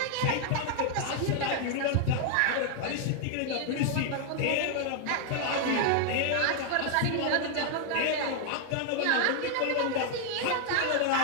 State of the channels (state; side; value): different; both; correlation 0.00